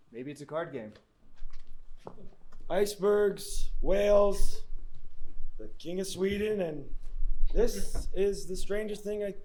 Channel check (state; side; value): identical; both; correlation 1.00